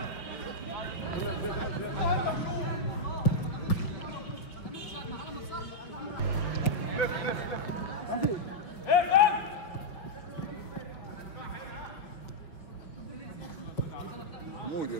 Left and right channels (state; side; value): late; right; 5.2 ms